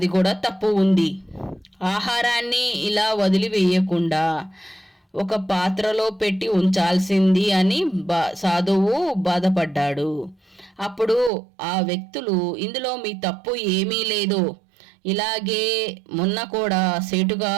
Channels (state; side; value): drops out; left; at 11.3 s